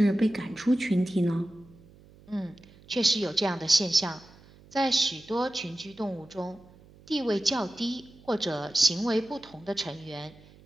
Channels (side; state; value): right; noise; hum, 25 dB below the sound